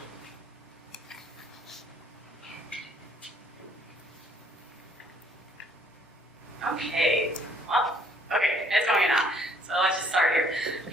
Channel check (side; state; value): both; normal; correlation 0.63